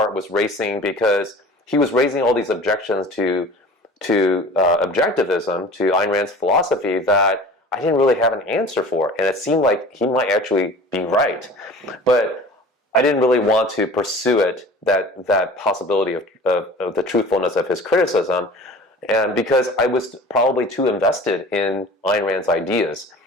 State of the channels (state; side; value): normal; both; correlation 0.42